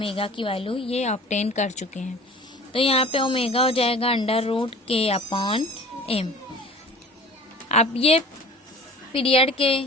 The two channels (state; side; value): normal; both; correlation 0.44